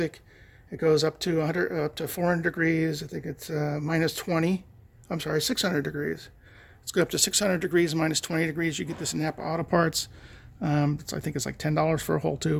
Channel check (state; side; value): identical; both; correlation 1.00